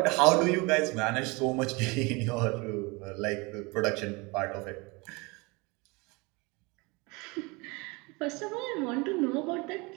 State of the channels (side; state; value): left; quieter; 26.7 dB